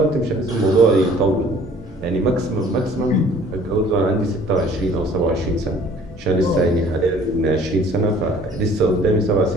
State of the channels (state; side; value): normal; both; correlation 0.53